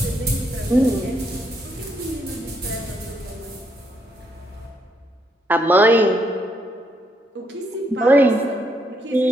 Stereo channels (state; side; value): normal; both; correlation 0.75